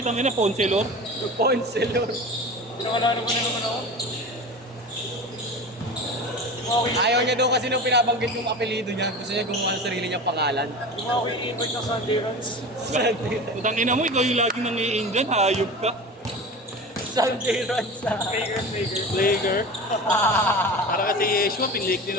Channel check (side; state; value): both; normal; correlation 0.32